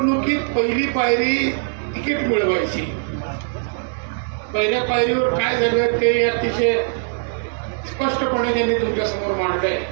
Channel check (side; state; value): left; silent; digital silence